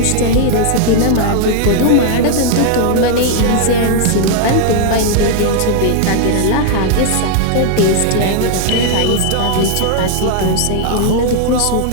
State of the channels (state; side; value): different; both; correlation 0.00